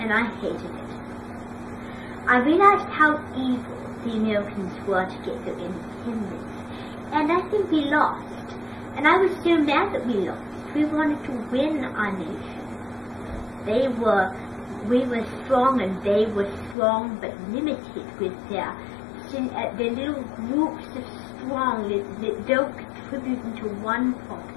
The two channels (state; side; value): drops out; right; at 16.8 s